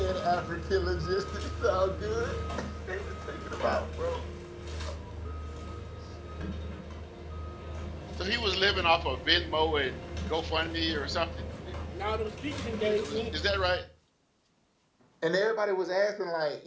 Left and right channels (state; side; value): identical; both; correlation 1.00